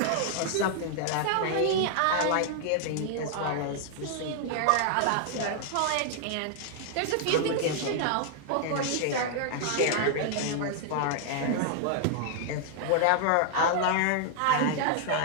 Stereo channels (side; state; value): both; different; correlation 0.00